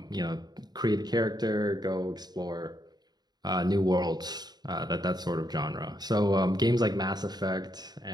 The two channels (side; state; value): left; late; 0.20 ms